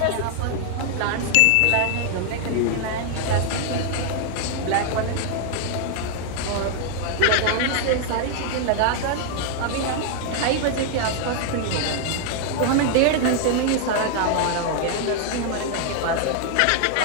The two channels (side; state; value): both; different; correlation 0.00